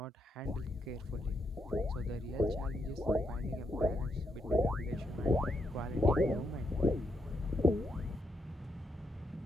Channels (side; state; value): both; normal; correlation 0.79